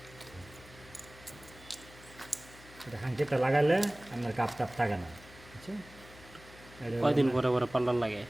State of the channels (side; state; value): left; noise; hum, 21 dB below the sound